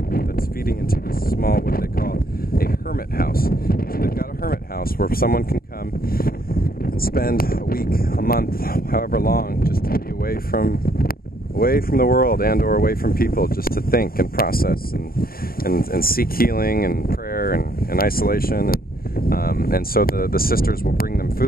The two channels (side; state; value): right; late; 0.43 ms